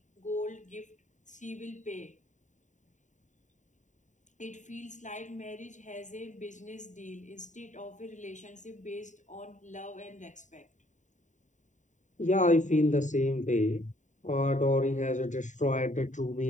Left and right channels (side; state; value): right; late; 0.36 ms